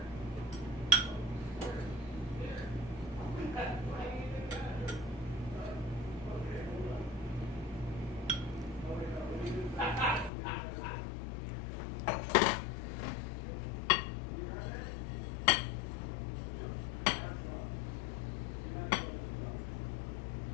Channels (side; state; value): right; drops out; at 10.3 s